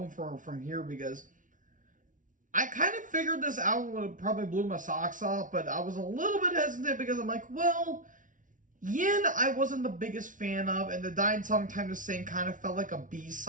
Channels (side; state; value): left; late; 0.38 ms